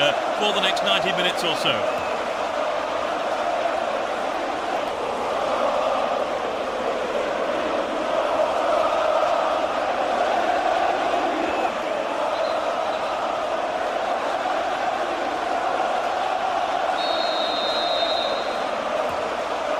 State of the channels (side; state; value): both; identical; correlation 1.00